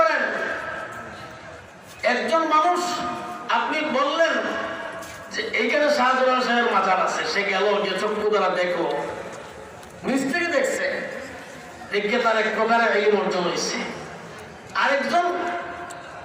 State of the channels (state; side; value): identical; both; correlation 1.00